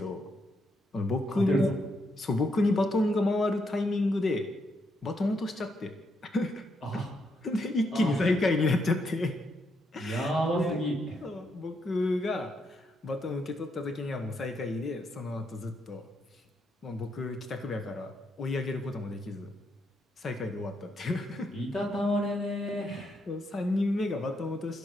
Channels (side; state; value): both; normal; correlation 0.78